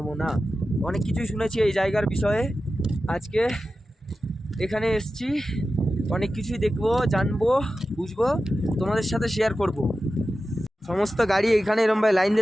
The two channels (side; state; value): both; normal; correlation 0.93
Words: না। অনেক কিছুই শুনেছি এই জায়গার বিষয়ে, আজকে এখানে এসছি, অনেক কিছুই দেখবো, জানবো, বুঝবো, তোমাদের সাথে শেয়ার করব। সমস্ত গাড়ি এখানে এরম ভাই লাইন